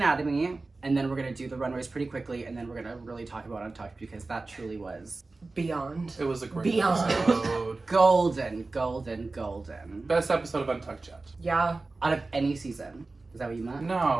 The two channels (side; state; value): left; quieter; 3.5 dB